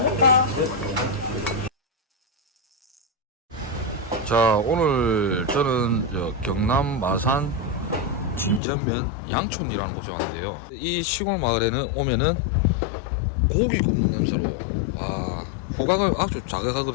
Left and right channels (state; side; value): drops out; right; at 8.6 s